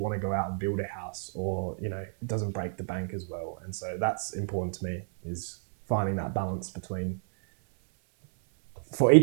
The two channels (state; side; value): silent; left; 58 dB below the other